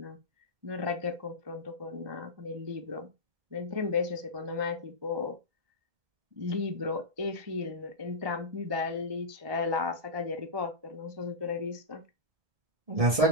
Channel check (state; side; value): late; left; 1.2 ms